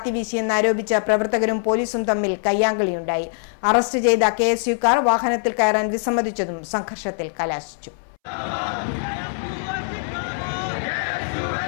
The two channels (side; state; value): right; silent; 64 dB below the other